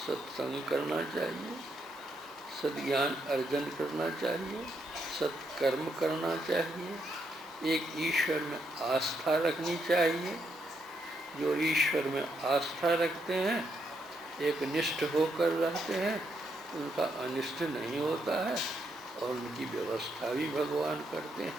करना चाहिए, सद्ज्ञान अर्जन करना चाहिए, सत्कर्म करना चाहिए, एक ईश्वर में आस्था रखनी चाहिए। जो ईश्वर में आस्था रखते हैं, एक निष्ठ होकर रहते हैं, उनका अनिष्ट नहीं होता है, और उनकी व्यवस्था भी भगवान करते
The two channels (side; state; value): both; normal; correlation 0.78